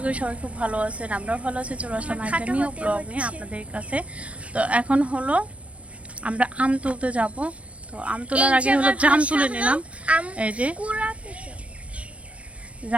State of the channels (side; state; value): left; late; 0.063 ms